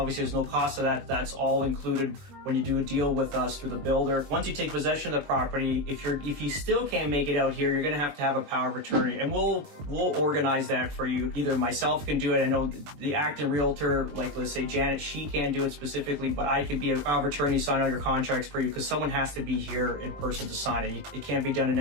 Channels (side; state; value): left; late; 21 ms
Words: there's no cost to that. That's all included when you do a deal with us through the builder. Once you take possession of the property, if you still can't make it out here, you're going to have a power of attorney, and we'll organize that for you. Either myself can do it. I know the acting realtor, like let's say Janet, she can't do it specifically, but I can be a power of attorney, sign all your contracts for you, because someone has to be here in person to sign it. It can't be done in